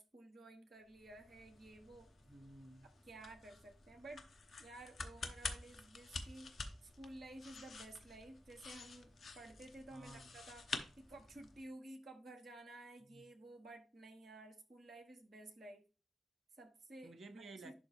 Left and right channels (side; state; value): both; normal; correlation 0.83